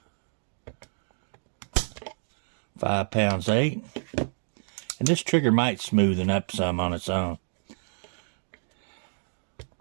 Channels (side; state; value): left; silent; digital silence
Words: 5 pounds 8. And this trigger might smoothen up some on its own.